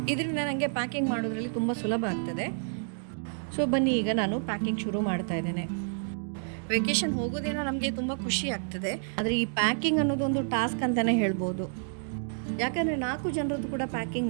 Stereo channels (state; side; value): silent; left; digital silence